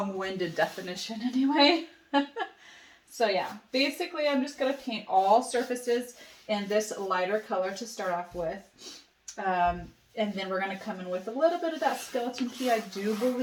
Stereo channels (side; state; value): both; identical; correlation 1.00